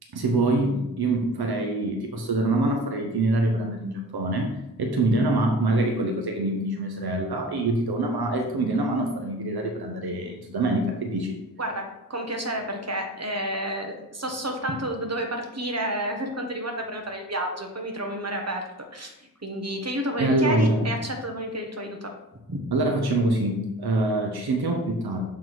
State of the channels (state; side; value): normal; both; correlation 0.37